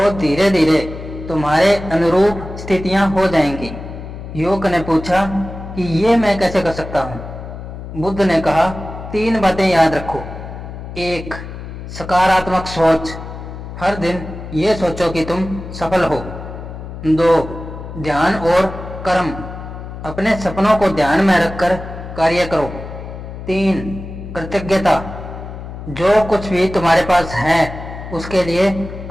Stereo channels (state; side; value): noise; left; hum, 11 dB below the sound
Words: धीरे धीरे तुम्हारे अनुरूप स्थितियां हो जाएंगी। युवक ने पूछा कि ये मैं कैसे कर सकता हूँ? बुद्ध ने कहा, 3 बातें याद रखो। 1, सकारात्मक सोच, हर दिन ये सोचो कि तुम सफल हो। 2, ध्यान और कर्म, अपने सपनों को ध्यान में रखकर कार्य करो। 3, कृतज्ञता, जो कुछ भी तुम्हारे पास है उसके लिए